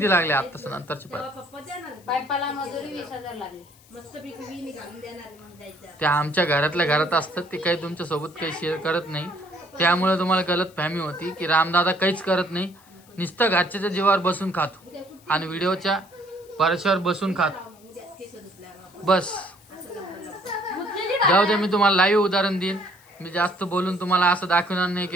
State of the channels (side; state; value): left; noise; hiss, 27 dB below the sound